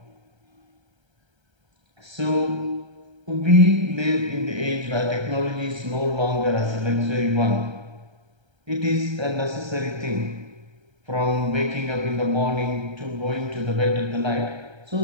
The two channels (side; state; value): left; late; 1.3 ms